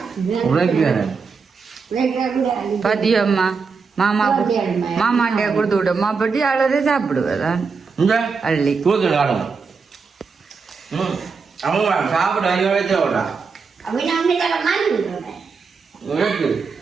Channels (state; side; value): quieter; left; 5.1 dB